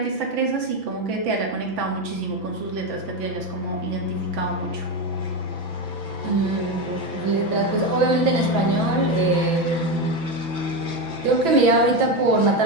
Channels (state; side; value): late; left; 6.0 ms